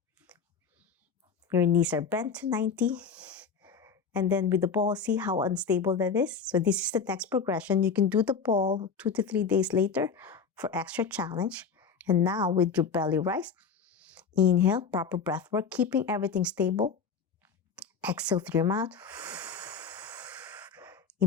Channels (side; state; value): right; quieter; 5.8 dB